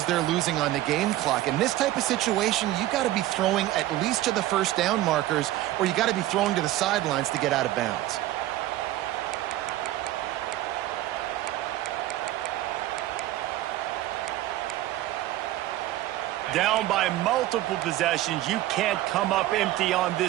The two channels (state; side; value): quieter; left; 15.2 dB